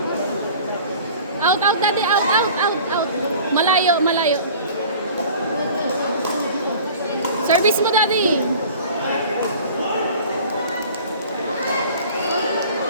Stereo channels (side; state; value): both; inverted; correlation -0.44